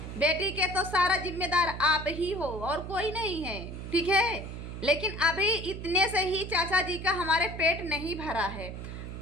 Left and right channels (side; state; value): right; noise; hum, 8 dB below the sound